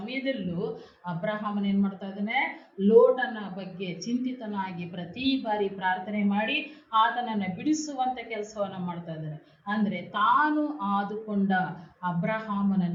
ಅಬ್ರಹಾಮನ್ ಏನ್ ಮಾಡ್ತಾ ಇದ್ದಾನೆ, ಲೋಟನ ಬಗ್ಗೆ ಚಿಂತಿತನಾಗಿ ಪ್ರತಿ ಬಾರಿ ಪ್ರಾರ್ಥನೆ ಮಾಡಿ ಆತನನ್ನ ಬಿಡಿಸುವಂತ ಕೆಲಸವನ್ನ ಮಾಡ್ತಾ ಇದ್ದಾನೆ. ಅಂದ್ರೆ ತಾನು ಆದುಕೊಂಡ ಅಬ್ರಹಾಮನ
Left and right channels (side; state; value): both; identical; correlation 1.00